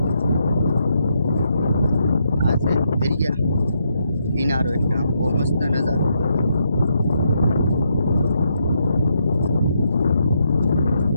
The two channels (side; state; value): both; inverted; correlation -0.78